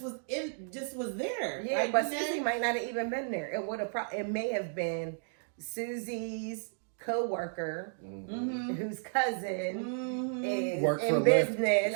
was there. Yeah, like, but Susie might not have even been there. It may have been Susie's co-worker whose cousin is in business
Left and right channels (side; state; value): left; silent; digital silence